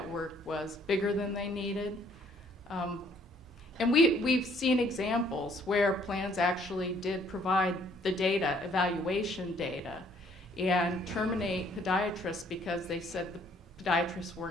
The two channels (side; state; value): both; normal; correlation 0.63